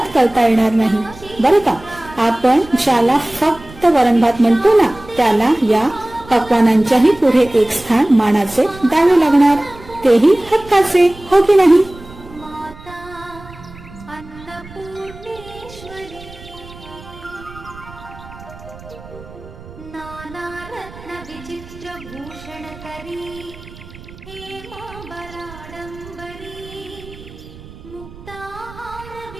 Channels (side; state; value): right; noise; rumble, 18 dB below the sound